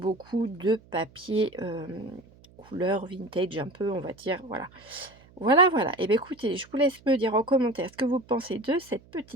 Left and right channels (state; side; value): noise; right; hum, 26 dB below the sound